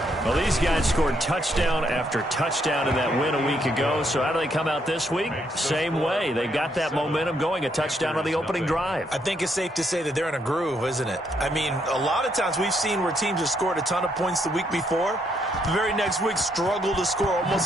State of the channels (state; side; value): normal; both; correlation 0.74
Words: Well, these guys scored touchdown after touchdown in that win a week ago. So how do they come out this week? Same way. They got that momentum going, a touchdown on the opening drive. I think it's safe to say that they're in a groove, isn't it? I mean, a lot of times we've seen where teams have scored a ton of points the week before. The very next week struggle to score